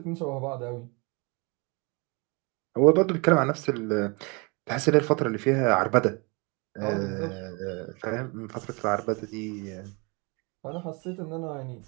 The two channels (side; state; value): left; quieter; 30.0 dB